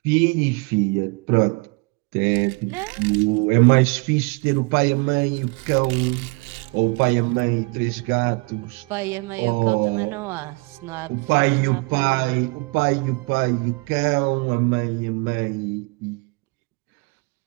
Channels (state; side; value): quieter; left; 28.9 dB